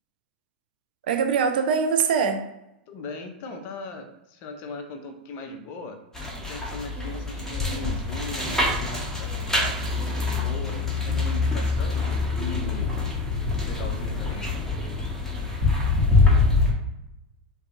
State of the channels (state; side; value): normal; both; correlation 0.20